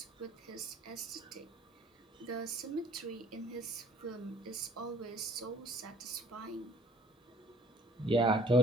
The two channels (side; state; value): both; normal; correlation 0.56